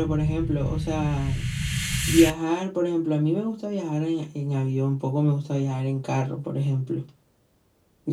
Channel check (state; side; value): identical; both; correlation 1.00